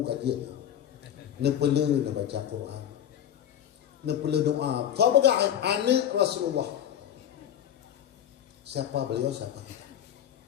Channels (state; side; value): quieter; right; 10.2 dB